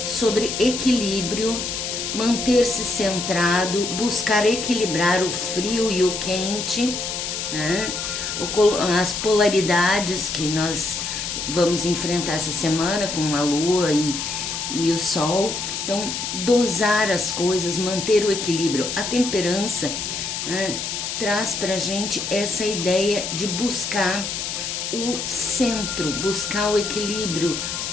sobre equilíbrio, manter-se centrado, buscar equilibrar o frio e o quente, né? As polaridades que nós vamos enfrentar essa semana com a lua e o sol. Então, dosar as coisas, manter o equilíbrio. A temperança, né, traz pra gente essa ideia de buscar o centro, buscar o equilíbrio,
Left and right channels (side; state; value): left; noise; hiss, 4 dB below the sound